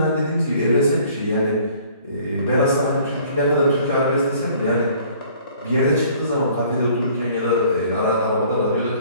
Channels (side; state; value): both; inverted; correlation -0.55